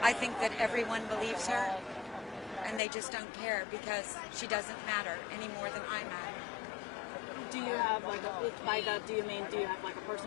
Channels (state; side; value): drops out; right; at 2.8 s